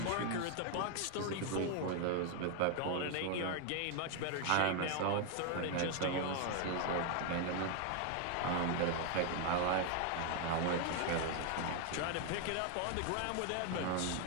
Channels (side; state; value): both; different; correlation 0.01